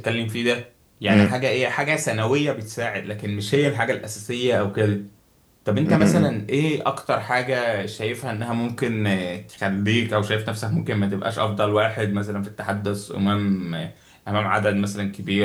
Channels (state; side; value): identical; both; correlation 1.00